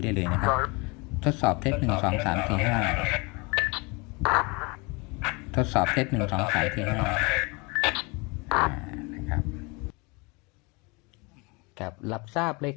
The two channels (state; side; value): quieter; right; 28.2 dB